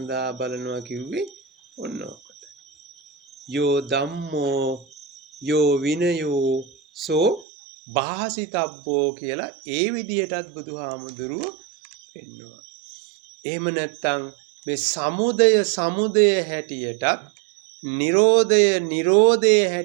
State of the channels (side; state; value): left; drops out; at 7.5 s